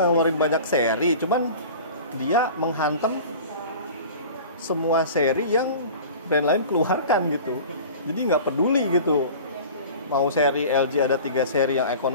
banyak seri, cuman dia menghantam semua seri yang brand lain keluarkan gitu. Jadi nggak peduli gitu, mau seri LG ada 3 seri yang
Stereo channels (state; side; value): inverted; both; correlation -0.39